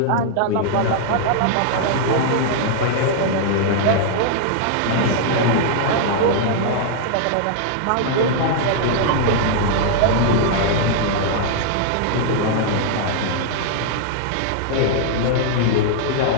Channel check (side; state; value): both; different; correlation -0.01